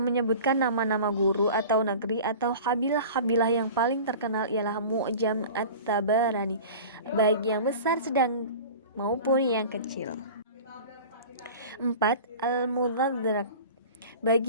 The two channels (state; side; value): inverted; both; correlation -0.38